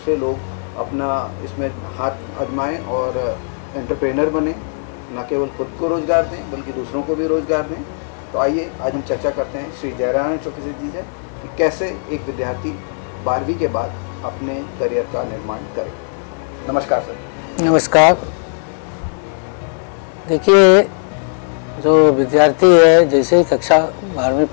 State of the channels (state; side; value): silent; right; digital silence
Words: लोग अपना इसमें हाथ आजमाएँ और एंटरप्रेनर बने, न केवल खुद को रोज़गार दें बल्कि दूसरों को भी रोज़गार दें। तो आइए आज हम चर्चा करते हैं श्री जयनारायण चौकसे जी से कि कैसे एक विद्यार्थी 12वीं के बाद अपने करियर का निर्माण करे। नमस्कार सर। नमस्कार। देखिए, जो विद्यार्थी है जैसे ही कक्षा 12वीं